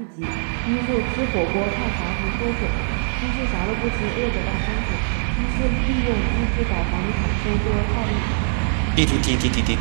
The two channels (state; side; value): silent; left; 64 dB below the other